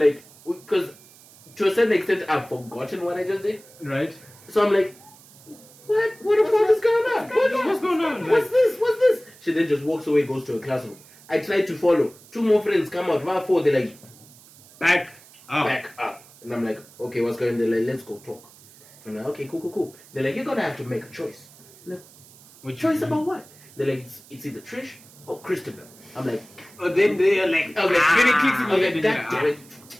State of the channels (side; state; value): right; noise; hiss, 24 dB below the sound